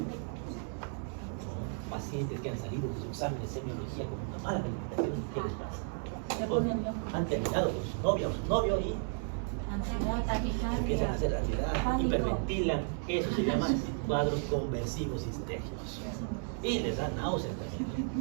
pacientes que han salido de su examen de semiología con una mala calificación, ¿qué les pasa? Han terminado con su novia o su novio y empiezan a hacer ansiedad, hiperventilan. Eso se llama cuadros conversivos histéricos. Y les da náuseas también.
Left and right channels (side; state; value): left; silent; 55 dB below the other